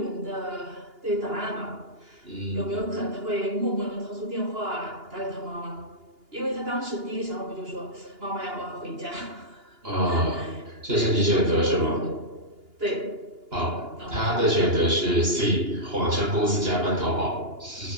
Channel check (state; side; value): late; left; 2.8 ms